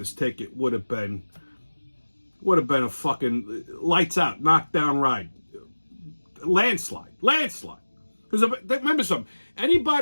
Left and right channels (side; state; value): both; inverted; correlation -1.00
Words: ticket would have been a fucking lights out, knockdown ride, landslide. Because remember something,